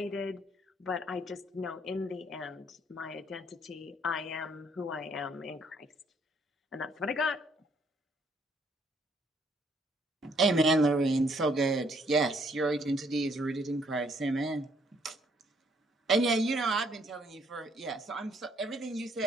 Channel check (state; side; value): normal; both; correlation 0.67